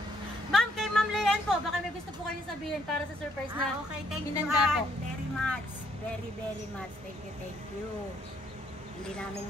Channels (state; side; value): normal; both; correlation 0.69